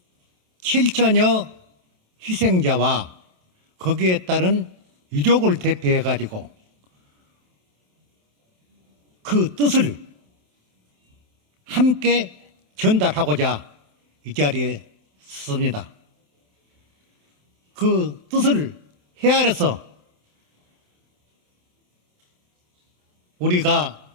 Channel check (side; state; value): left; late; 27 ms